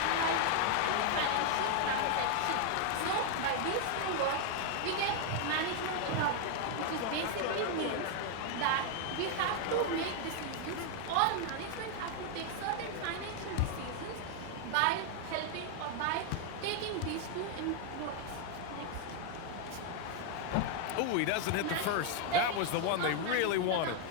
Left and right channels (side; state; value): both; different; correlation 0.00